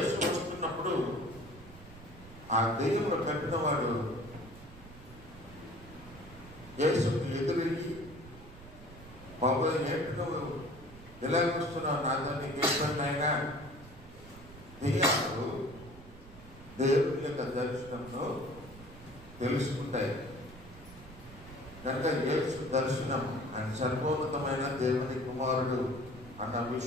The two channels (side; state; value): right; noise; rumble, 18 dB below the sound